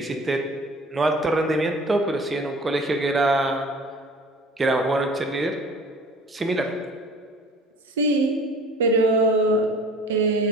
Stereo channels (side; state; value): both; normal; correlation 0.46